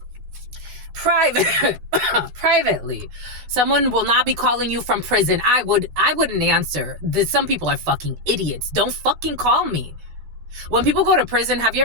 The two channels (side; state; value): left; late; 12 ms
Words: Privately. Someone will not be calling you from prison. I wouldn't answer. Some people are fucking idiots. Don't fucking call me. When people go to prison, have you